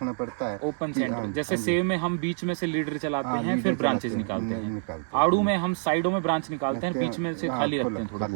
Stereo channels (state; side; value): silent; left; 60 dB below the other